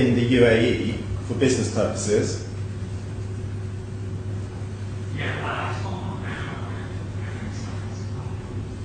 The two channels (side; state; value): both; identical; correlation 1.00